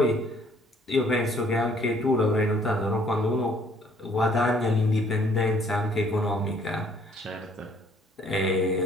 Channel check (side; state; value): both; normal; correlation 0.61